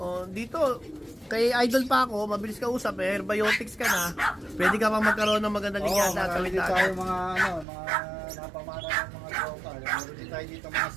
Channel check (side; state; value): left; drops out; at 7.7 s